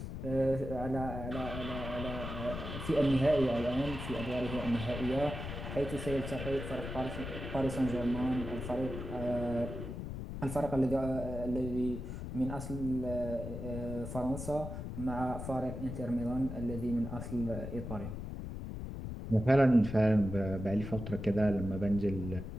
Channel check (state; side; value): noise; left; rumble, 7 dB below the sound